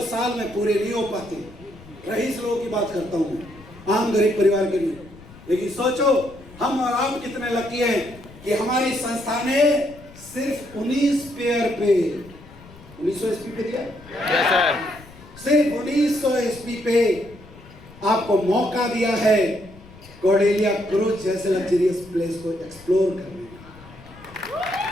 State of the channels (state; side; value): noise; left; rumble, 20 dB below the sound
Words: साल में पूरे नहीं हो पाते। रईस लोगों की बात करता हूँ, आम गरीब परिवार के लिए। लेकिन सोचो हम और आप कितने लकी हैं कि हमारी संस्था ने सिर्फ 19 पेयर पे 1900 एसपी पे दिया, यस सर। सिर्फ 1900 एसपी पे आपको मौका दिया है कॉर्डेलिया क्रूज जैसे लग्जरियस प्लेस को एक्सप्लोर करने का।